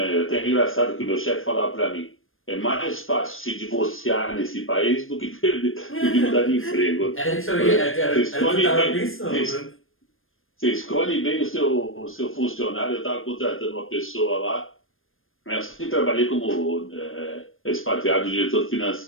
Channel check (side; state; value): right; late; 0.60 ms